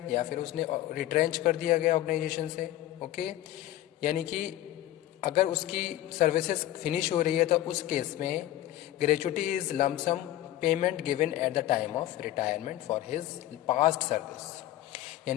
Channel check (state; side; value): quieter; right; 14.2 dB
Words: या फिर उसने रिट्रेंच कर दिया गया ऑर्गेनाइजेशन से. ओके, यानी कि अगर उसकी सर्विसेज फिनिश हो रही है तो उस केस में gratuity is lump sum payment given at the time of retirement for his past service.